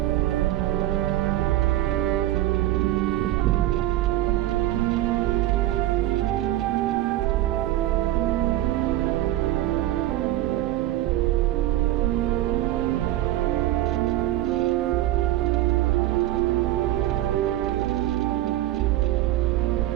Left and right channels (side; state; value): left; quieter; 14.8 dB